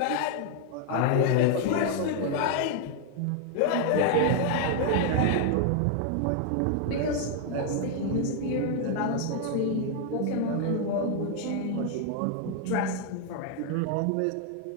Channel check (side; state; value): both; different; correlation 0.00